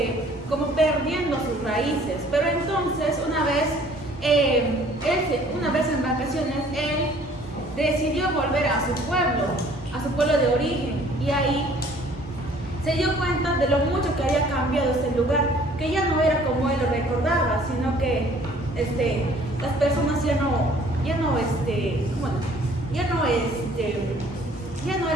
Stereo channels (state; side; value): normal; both; correlation 0.55